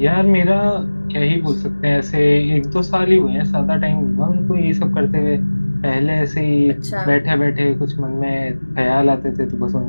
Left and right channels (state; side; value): inverted; both; correlation -1.00